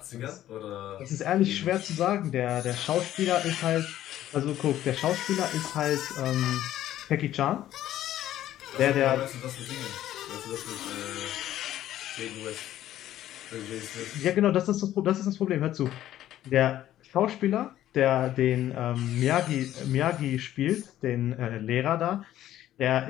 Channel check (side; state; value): right; quieter; 12.9 dB